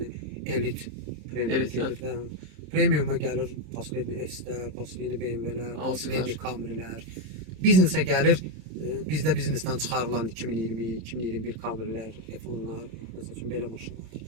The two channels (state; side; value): late; left; 27 ms